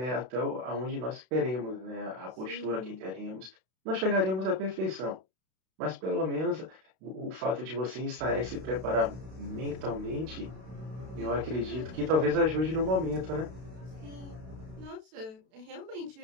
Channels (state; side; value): late; left; 32 ms